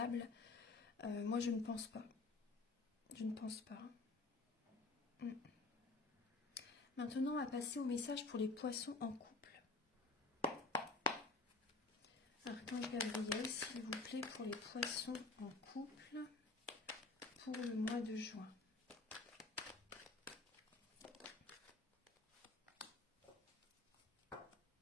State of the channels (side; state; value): right; quieter; 3.6 dB